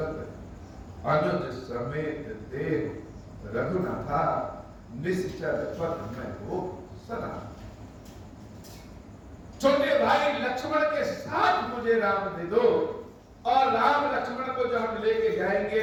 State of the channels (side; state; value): both; identical; correlation 1.00